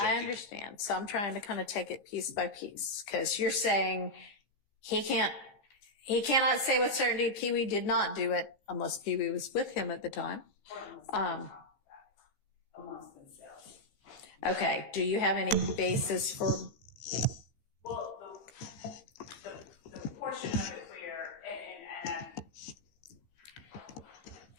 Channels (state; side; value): late; right; 15 ms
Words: I understand. So I'm trying to kind of take it piece by piece, because you're saying he cannot say with certainty Pee Wee did not do it unless Pee Wee was with him at the time. Amongst themselves. Okay. Do you have any basis for? Well, the portion of it where,